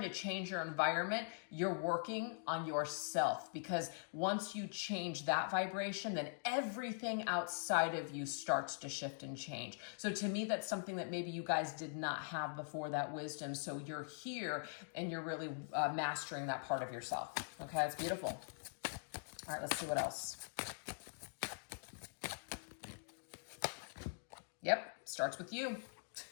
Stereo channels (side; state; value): right; silent; digital silence